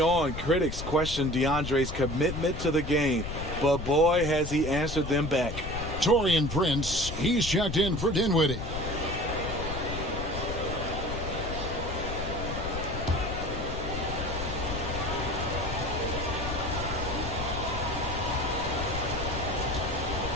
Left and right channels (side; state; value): left; noise; rumble, 6 dB below the sound